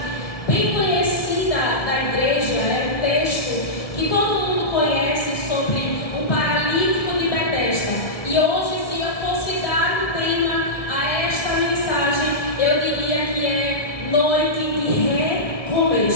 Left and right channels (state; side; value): late; right; 1.6 ms